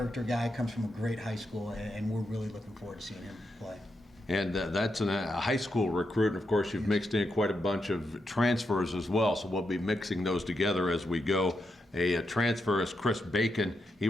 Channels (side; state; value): both; normal; correlation 0.84